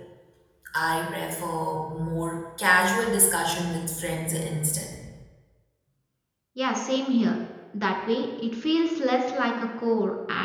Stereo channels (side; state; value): both; identical; correlation 1.00